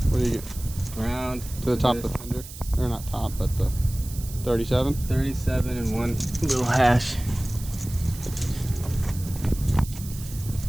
What do you get? Ground To the top of the fender, or not top, but the 37. 37 and one little hash.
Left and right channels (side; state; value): right; noise; hiss, 15 dB below the sound